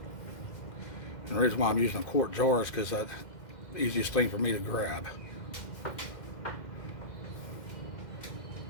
And the reason why I'm using a quart jar is because that's the easiest thing for me to grab.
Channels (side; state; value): right; late; 2.1 ms